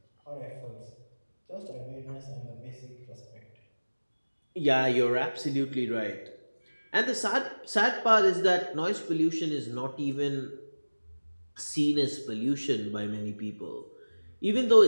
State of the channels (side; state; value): both; inverted; correlation -1.00